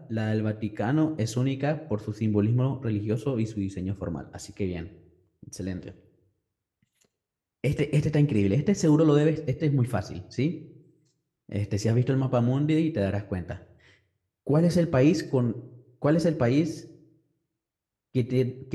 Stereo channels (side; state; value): both; identical; correlation 1.00